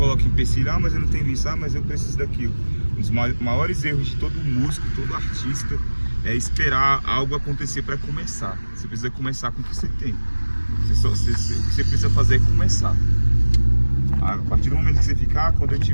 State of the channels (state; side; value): inverted; both; correlation -1.00